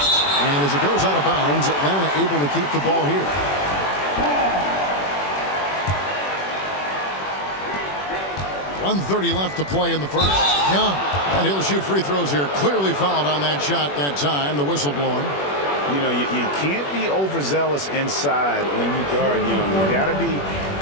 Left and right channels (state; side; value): late; right; 21 ms